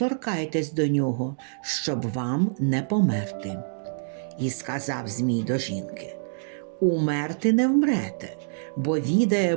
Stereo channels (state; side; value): silent; left; digital silence